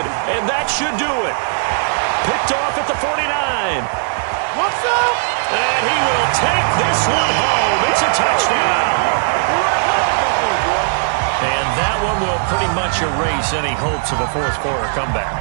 and that should do it. Picked off at the 49. What's up? And he will take this one home. It's a touchdown. And that one will pretty much erase any hopes of a fourth quarter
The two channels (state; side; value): silent; left; digital silence